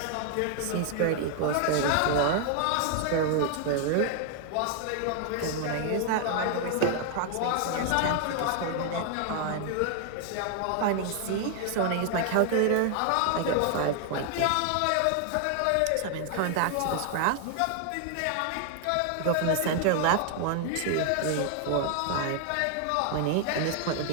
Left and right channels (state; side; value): different; both; correlation 0.00